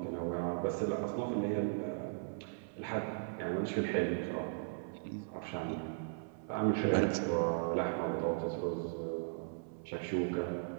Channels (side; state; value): left; silent; 53 dB below the other